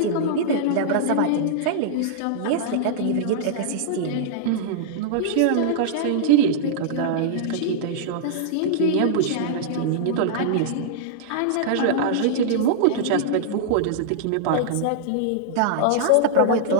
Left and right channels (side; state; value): both; different; correlation -0.02